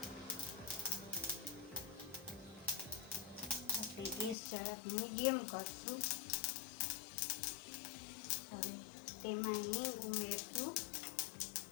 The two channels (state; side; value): drops out; right; at 4.4 s